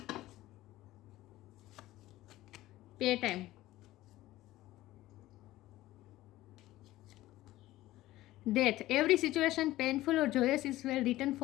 पे time, death, every situation painful और joyous is well written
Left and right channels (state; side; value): quieter; right; 16.3 dB